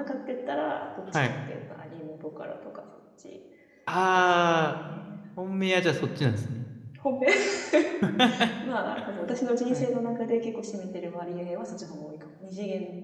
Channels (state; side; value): identical; both; correlation 1.00